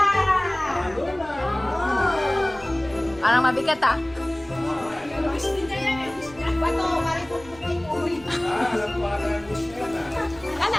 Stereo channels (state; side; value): noise; right; rumble, 21 dB below the sound